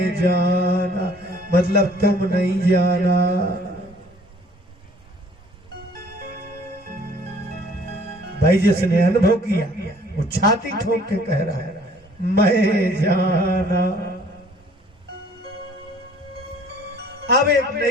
जाना मतलब तुम नहीं जाना। भाई जिसने अनुभव किया वो छाती ठोक के कह रहा है मैं जाना। अब एक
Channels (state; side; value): normal; both; correlation 0.56